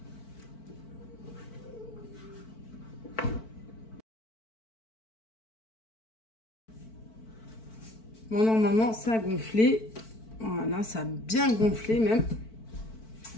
Bon, normalement, ça a gonflé. Voilà, ça a bien gonflé même.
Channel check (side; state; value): right; late; 4.5 ms